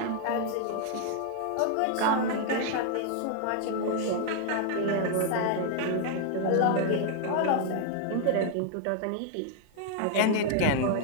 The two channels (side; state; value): both; different; correlation 0.00